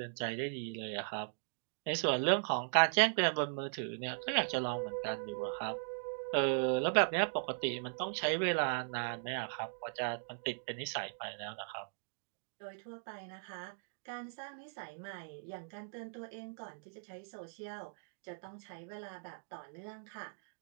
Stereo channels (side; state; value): left; silent; digital silence